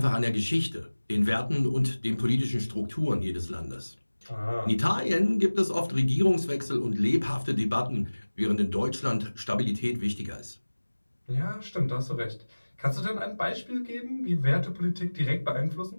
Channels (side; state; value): both; inverted; correlation -1.00